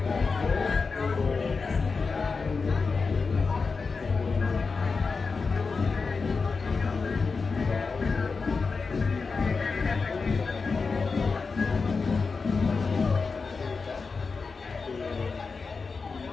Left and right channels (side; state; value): right; quieter; 4.6 dB